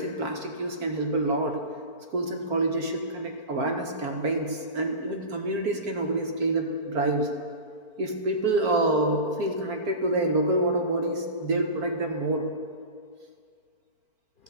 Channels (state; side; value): late; left; 4.5 ms